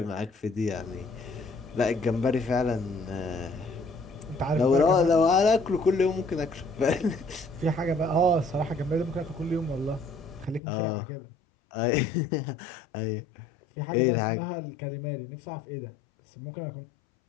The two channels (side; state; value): right; drops out; at 10.6 s